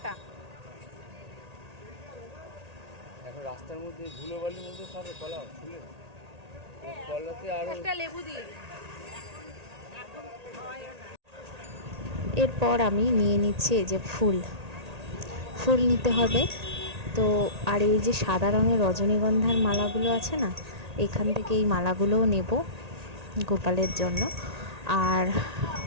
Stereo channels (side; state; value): left; late; 1.8 ms